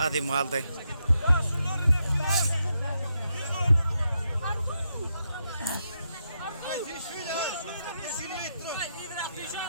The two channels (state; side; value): inverted; both; correlation -0.82